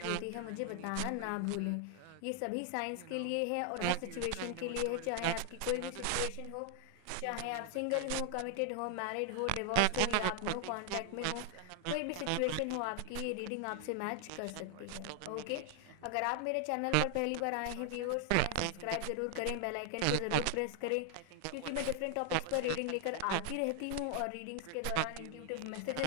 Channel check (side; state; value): both; different; correlation 0.00